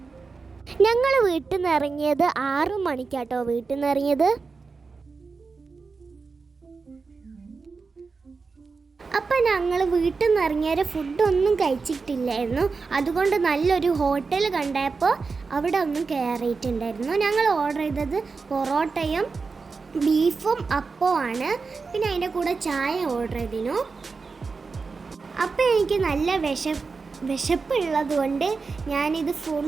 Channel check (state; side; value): quieter; left; 4.6 dB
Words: ഞങ്ങൾ വീട്ടിൽ നിന്ന് ഇറങ്ങിയത് 6 മണിക്കാട്ടോ. വീട്ടിൽ നിന്ന് ഇറങ്ങിയത്. അപ്പം ഞങ്ങൾ വീട്ടിൽ നിന്ന് ഇറങ്ങിയ ഫുഡൊന്നും കഴിച്ചിട്ടില്ലായിരുന്നു. അതുകൊണ്ട് നല്ലൊരു ഹോട്ടൽ കണ്ടപ്പോൾ അവിടെ ഒന്നും കയറിയിട്ടുണ്ടായിരുന്നു. ഞങ്ങൾ ഓർഡർ ചെയ്തത് പൊറോട്ടയും ബീഫും അപ്പവുമാണ്. പിന്നെ അതിൻ്റെ കൂടെ ചായ ഓർഡർ ചെയ്തിരുന്നു. അപ്പം എനിക്ക് നല്ല വിശപ്പുള്ളത് കൊണ്ട് ഞാനിത്